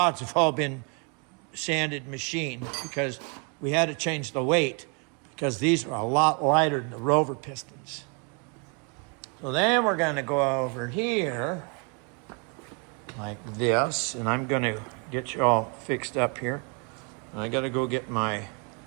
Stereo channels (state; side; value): quieter; left; 35.2 dB